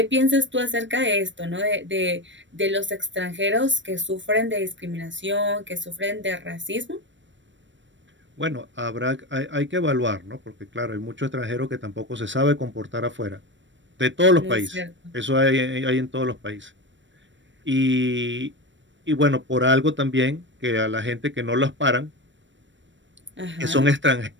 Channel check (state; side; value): late; left; 0.54 ms